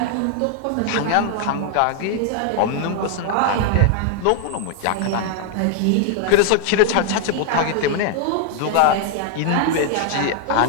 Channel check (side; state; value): both; different; correlation 0.00